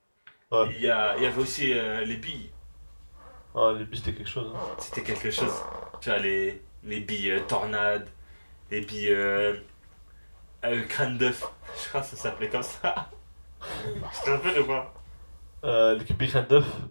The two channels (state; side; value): inverted; both; correlation -1.00